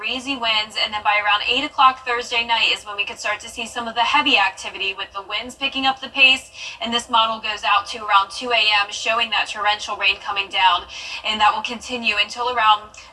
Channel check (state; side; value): identical; both; correlation 1.00